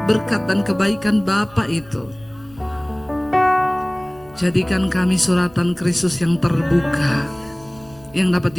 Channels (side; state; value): right; noise; rumble, 25 dB below the sound